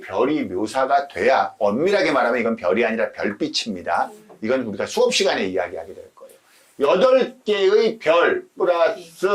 별이 묘사가 돼야 엄밀하게 말하면 이건 별이 아니라 별빛입니다. 이건 우리가 수업 시간에 이야기하게 될 거예요. 8개의 별 플러스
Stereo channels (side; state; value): both; identical; correlation 1.00